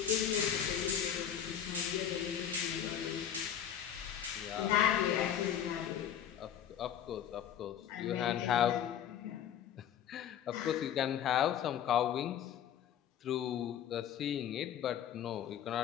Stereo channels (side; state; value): right; quieter; 9.6 dB